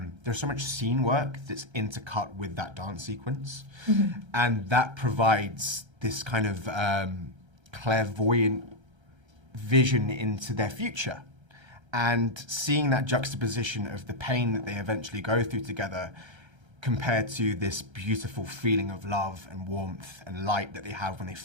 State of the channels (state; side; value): late; left; 1.3 ms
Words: scene work that's intercut with that dance sequence, and that provides this kind of clairvoyant vision into their future. And seeing that juxtaposition of the pain that they eventually go through together compared to this beautiful feeling of love and warmth and light that they have when they